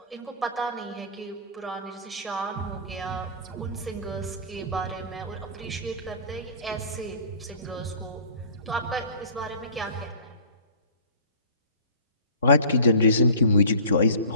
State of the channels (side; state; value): both; inverted; correlation -0.43